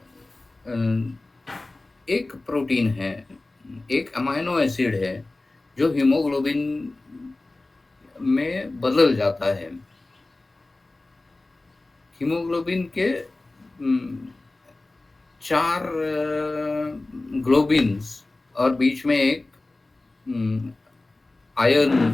एक प्रोटीन है, एक अमाइनो एसिड है जो हीमोग्लोबिन में बदल जाता है। हीमोग्लोबिन के 4 ग्लोबिन्स और बीच में एक आयरन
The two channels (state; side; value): quieter; right; 3.0 dB